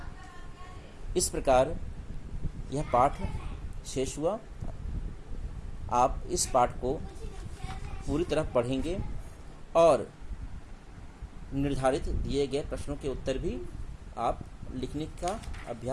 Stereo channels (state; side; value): identical; both; correlation 1.00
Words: इस प्रकार यह पाठ शेष हुआ। आप इस पाठ को पूरी तरह पढ़ेंगे और निर्धारित दिए गए प्रश्नों के उत्तर भी आप लिखने का